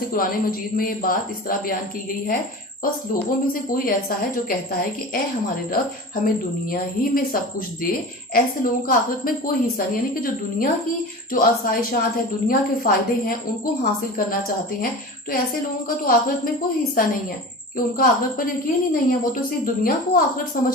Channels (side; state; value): both; normal; correlation 0.33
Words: कुरान मजीद में ये बात इस तरह बयान की गई है, बस लोगों में से कोई ऐसा है जो कहता है कि ए हमारे रब हमें दुनिया ही में सब कुछ दे। ऐसे लोगों का आखिरत में कोई हिस्सा नहीं, यानी कि जो दुनिया की जो आसाइशात है, दुनिया के फायदे हैं, उनको हासिल करना चाहते हैं, तो ऐसे लोगों का तो आखिरत में कोई हिस्सा नहीं है, कि उनका आखिरत पर यकीन ही नहीं है। वो तो सिर्फ दुनिया को आखिरत